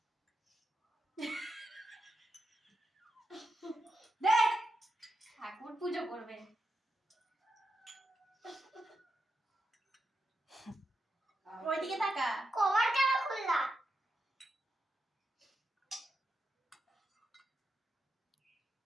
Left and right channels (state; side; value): normal; both; correlation 0.86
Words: দে, ঠাকুর পুজো করবে। ওইদিকে তাকা। কভার কেন খুললা?